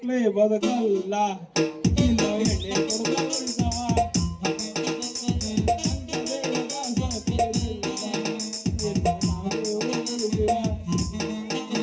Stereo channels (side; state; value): both; identical; correlation 1.00